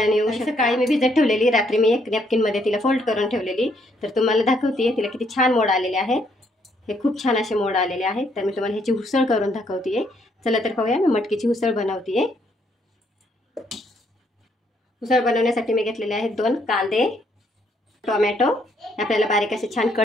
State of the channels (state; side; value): normal; both; correlation 0.71